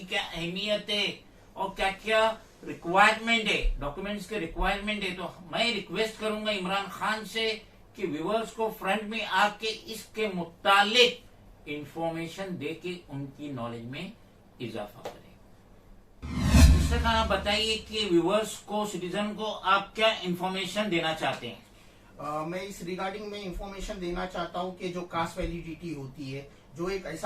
क्या अहमियत है और क्या क्या रिक्वायरमेंट है, डॉक्यूमेंट्स के रिक्वायरमेंट है। तो मैं रिक्वेस्ट करूंगा इमरान खान से कि व्यूवर्स को फ्रंट में आके इसके मुतालिक इंफॉर्मेशन दे के उनकी नॉलेज में इजाफा करें। मिस्टर खान, आप बताइए कि व्यूवर्स को, सिटीजन को आप क्या इंफॉर्मेशन देना चाहते हैं? मैं इस रिगार्डिंग में इंफॉर्मेशन देना चाहता हूँ कि जो कास्ट वैलिडिटी होती है, जो एक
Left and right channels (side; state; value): both; identical; correlation 1.00